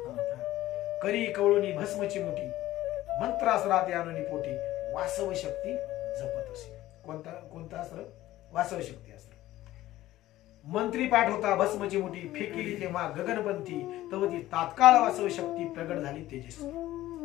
करी कवळुनी भस्मची मुठी मंत्रासरात आणून पोटी वासव शक्ती जपत असे. कोणता अस्त्र. वासव शक्ती अस्त्र. मंत्री पाठ होता भस्मची मुठी फेकिली तेव्हा गगनपंथी तव ती तात्काळ वासव शक्ती प्रगट झाली तेजस्वी.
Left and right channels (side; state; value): right; quieter; 15.3 dB